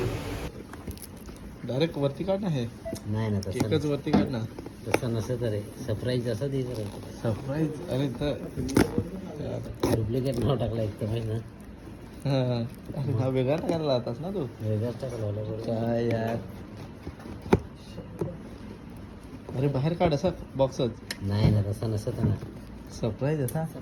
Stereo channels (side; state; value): both; identical; correlation 1.00